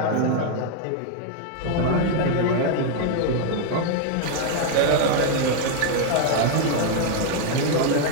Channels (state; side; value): different; both; correlation 0.00